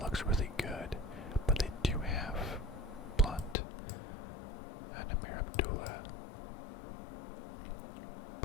really good, but they do have Blunt and Amir Abdullah.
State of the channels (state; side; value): drops out; right; at 3.6 s